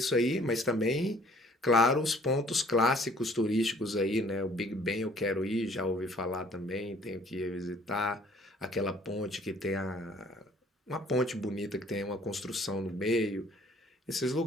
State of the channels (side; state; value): both; normal; correlation 0.57